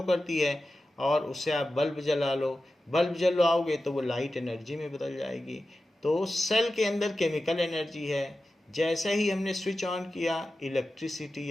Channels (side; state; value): both; normal; correlation 0.93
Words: करती है। और उससे आप बल्ब जला लो, बल्ब जलाओगे तो वो लाइट एनर्जी में बदल जाएगी। तो सेल के अंदर केमिकल एनर्जी है, जैसे ही हमने स्विच ऑन किया